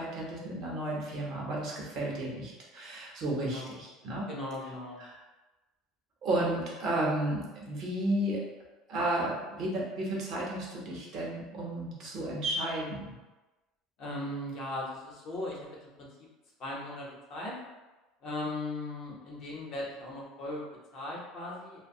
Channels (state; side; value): normal; both; correlation 0.53